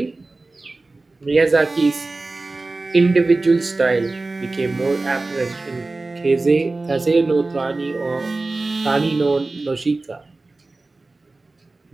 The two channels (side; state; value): left; quieter; 3.3 dB